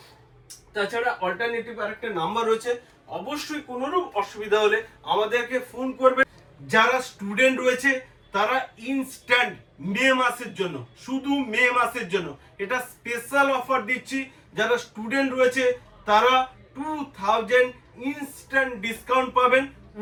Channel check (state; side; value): identical; both; correlation 1.00